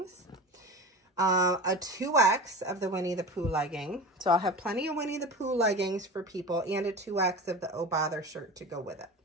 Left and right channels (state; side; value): normal; both; correlation 0.30